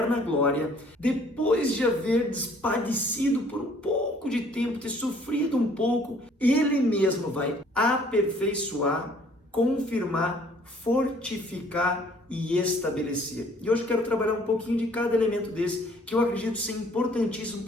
glória, depois de haver padecido por um pouco de tempo, ter sofrido um pouco, Ele mesmo vai aperfeiçoar, confirmar, fortificar e estabelecer." E hoje eu quero trabalhar um pouquinho de cada elemento desse, que eu acredito ser importantíssimo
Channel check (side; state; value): both; normal; correlation 0.58